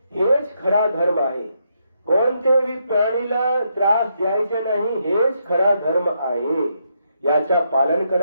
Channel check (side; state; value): both; inverted; correlation -0.79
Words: हेच खरा धर्म आहे। कोणत्याही प्राणीला त्रास द्यायचा नाही, हेच खरा धर्म आहे। याचा पालन